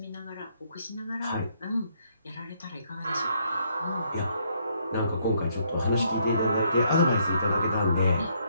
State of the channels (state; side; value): inverted; both; correlation -0.70